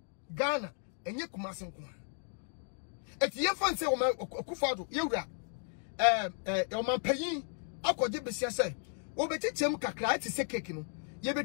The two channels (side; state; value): right; silent; 55 dB below the other